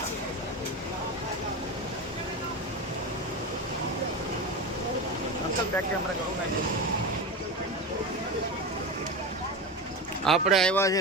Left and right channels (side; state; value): both; normal; correlation 0.22